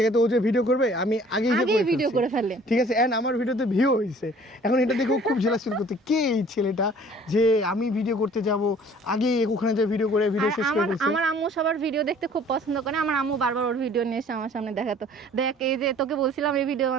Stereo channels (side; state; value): both; normal; correlation 0.52